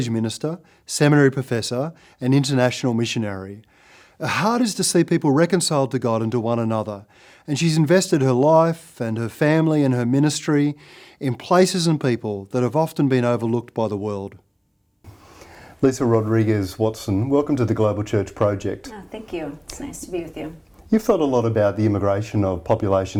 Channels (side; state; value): both; identical; correlation 1.00